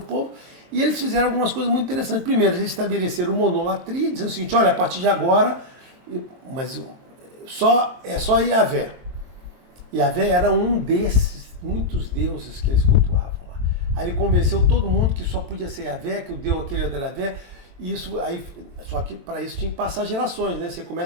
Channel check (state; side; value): late; left; 23 ms